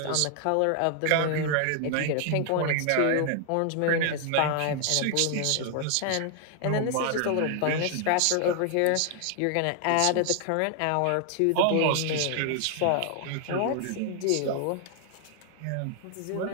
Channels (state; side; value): different; both; correlation 0.00